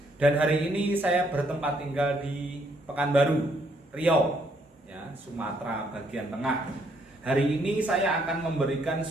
Dan hari ini saya bertempat tinggal di Pekanbaru, Riau, ya, Sumatera bagian tengah. Hari ini saya akan memberikan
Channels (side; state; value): both; normal; correlation 0.70